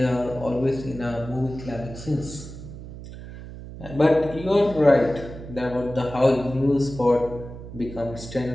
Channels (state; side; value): noise; right; hum, 13 dB below the sound